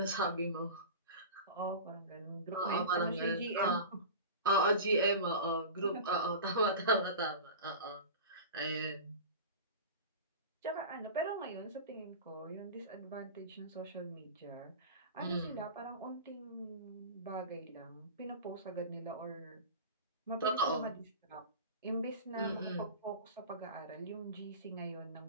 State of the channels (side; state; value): both; inverted; correlation -0.32